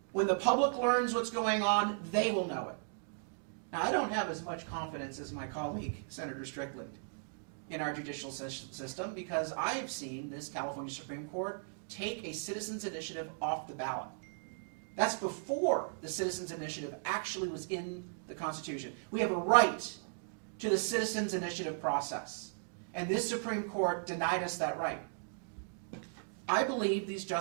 When the public learns what's going on, they will know it. Now, I don't have as much confidence as my colleague, Senator Strickland, in our judicial system, because I've seen this California Supreme Court take a citizens' initiative off the ballot. That's before the citizens' initiative actually was in the Constitution. We have a right to the citizens' initiative process, and this Supreme Court denied us that right. I believe these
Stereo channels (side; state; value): left; silent; digital silence